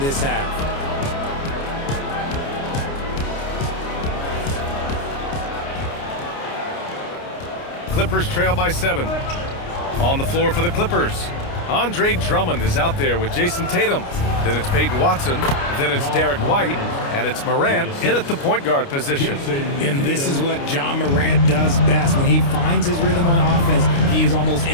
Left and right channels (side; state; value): right; late; 29 ms